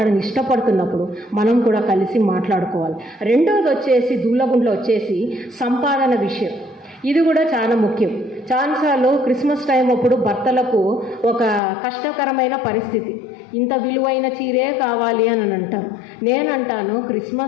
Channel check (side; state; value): right; drops out; at 11.6 s